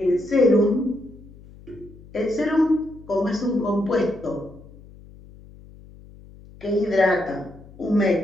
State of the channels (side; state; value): left; noise; hum, 21 dB below the sound